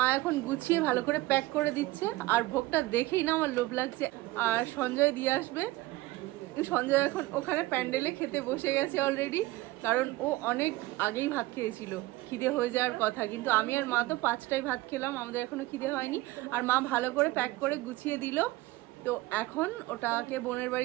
এখন গুছিয়ে ভালো করে প্যাক করে দিচ্ছে। আর ভোগটা দেখেই না আমার লোভ লাগছে। আর সঞ্জয় দিয়ে আসবে। সঞ্জয় এখন ওখানে প্যান্ডেলে খেতে বসে গেছে অলরেডি, কারণ ও অনেক আগেই ভাত খেয়েছিল, খিদে হয়ে যাওয়ার কথা। কিন্তু আমি আর মা তো 5টায় ভাত খেলাম, আমাদের এখনো খিদে হয়নি। আর মা ভালো করে প্যাক করে গুছিয়ে দিল। তো এখন ওটাকে বোনের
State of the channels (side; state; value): left; quieter; 19.2 dB